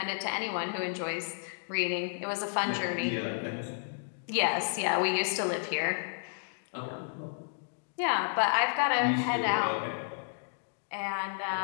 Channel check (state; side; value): silent; right; digital silence